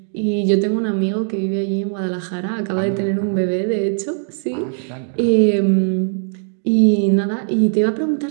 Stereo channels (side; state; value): left; silent; 66 dB below the other